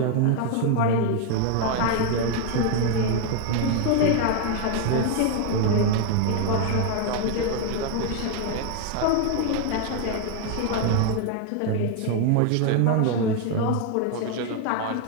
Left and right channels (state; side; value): different; both; correlation 0.01